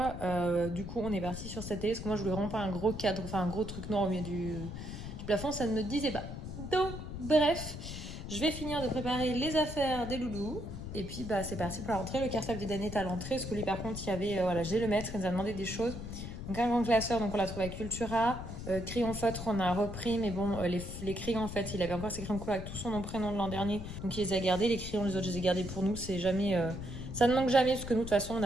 Du coup, on est parti sur cette télé parce que moi, je voulais vraiment pas un gros cadre, enfin un gros truc noir au milieu du plafond. Ça ne me disait pas. Donc, bref. Je vais finir de préparer les affaires des loulous. Et puis, bah, c'est parti pour la rentrée. Le cartable d'Eden est à l'entrée. Parce que lui, par contre, il y avait, voilà, j'ai le maître, il nous a demandé des choses. Donc, un grand classeur, donc on l'a trouvé à Cultura. Crayon feutre, on a repris. Mais bon, les crayons, en fait, il avait encore ses crayons couleur avec tout son nom, prénom de l'an dernier. Donc, il les a gardés. Les crayons, les autres, je les ai gardés pour nous. C'est jamais, ça ne manque jamais. Parce que nous, de toute façon, on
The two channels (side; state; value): left; noise; rumble, 8 dB below the sound